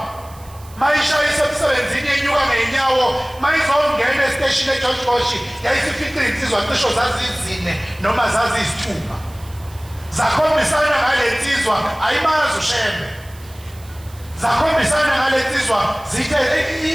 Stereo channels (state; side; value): noise; right; hiss, 23 dB below the sound